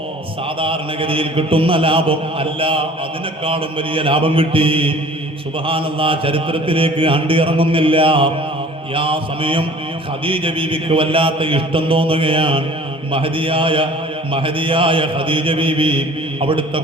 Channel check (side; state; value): both; normal; correlation 0.48